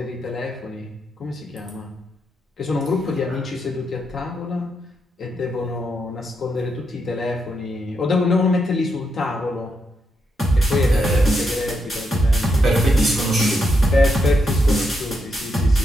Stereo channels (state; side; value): normal; both; correlation 0.81